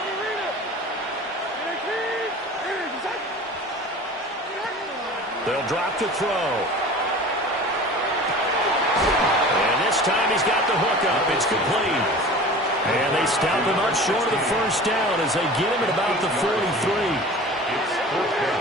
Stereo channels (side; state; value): both; normal; correlation 0.39